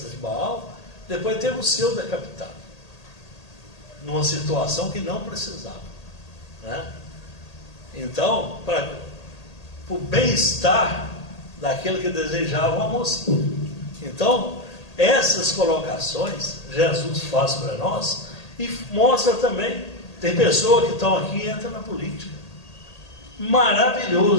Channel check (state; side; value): late; right; 1.8 ms